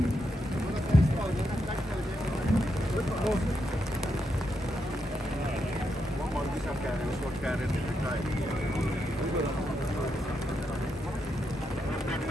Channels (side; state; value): both; normal; correlation 0.83